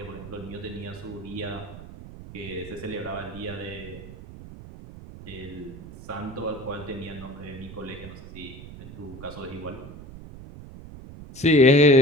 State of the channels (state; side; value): noise; right; rumble, 14 dB below the sound